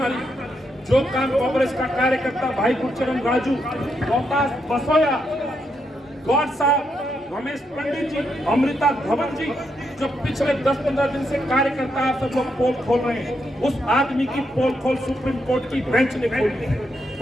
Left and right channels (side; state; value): both; normal; correlation 0.80